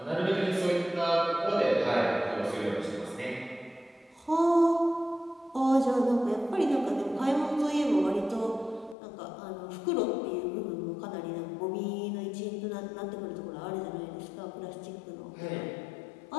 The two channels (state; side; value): drops out; right; at 9.0 s